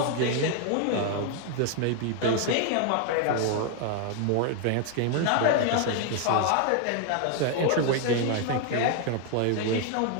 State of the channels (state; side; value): different; both; correlation 0.00